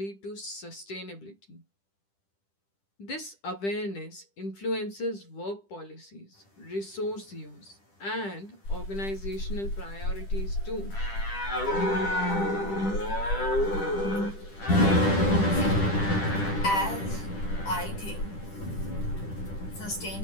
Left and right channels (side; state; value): right; late; 10 ms